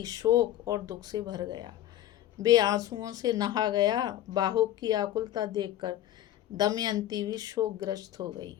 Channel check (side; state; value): right; quieter; 12.8 dB